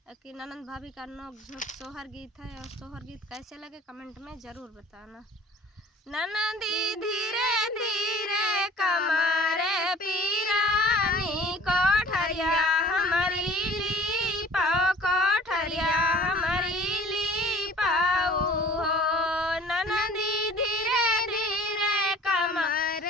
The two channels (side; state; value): both; normal; correlation 0.47